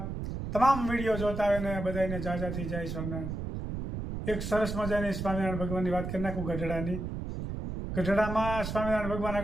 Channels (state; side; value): noise; right; rumble, 5 dB below the sound